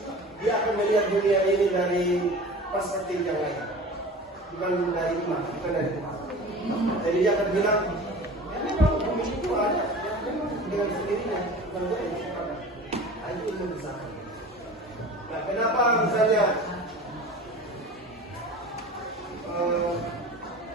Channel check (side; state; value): both; normal; correlation 0.37